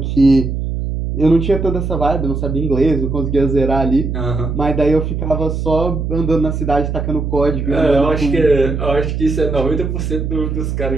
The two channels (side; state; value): right; noise; hum, 3 dB below the sound